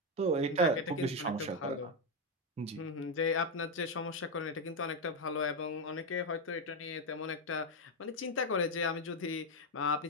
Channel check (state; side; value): normal; both; correlation 0.06